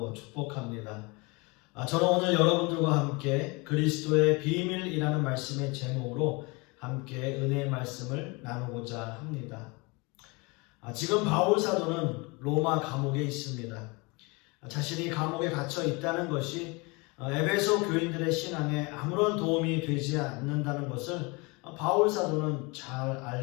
축복합니다. 저는 오늘 여러분들과 함께 그리스도의 비밀이라는 말씀의 제목으로 함께 은혜의 말씀을 나누고자 합니다. 지금 바울 사도는 로마 감옥에 있습니다. 자신이 감옥에 갇혀 있다는 것이 에베소 교인들의 신앙에 아무런 도움이 되지 않는다는 것을 바울 사도는 잘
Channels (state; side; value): quieter; right; 27.5 dB